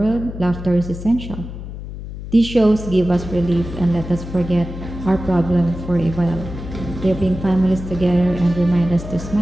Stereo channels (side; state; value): left; noise; hum, 10 dB below the sound